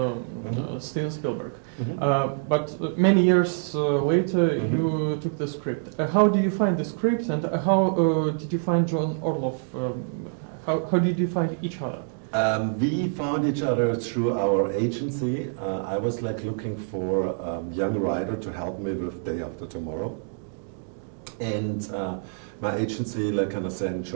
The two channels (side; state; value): left; silent; digital silence